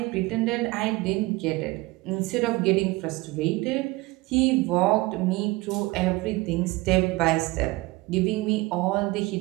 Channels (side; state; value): left; quieter; 21.6 dB